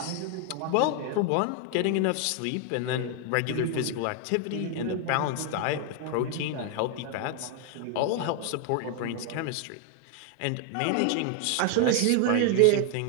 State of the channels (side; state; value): both; different; correlation 0.00